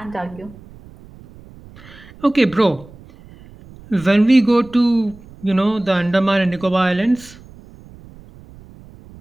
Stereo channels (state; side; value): noise; right; rumble, 21 dB below the sound